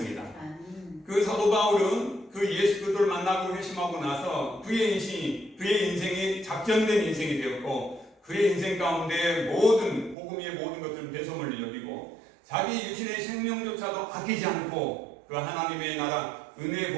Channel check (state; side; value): drops out; left; at 10.2 s